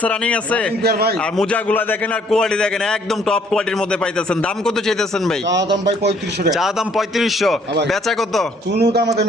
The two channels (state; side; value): normal; both; correlation 0.63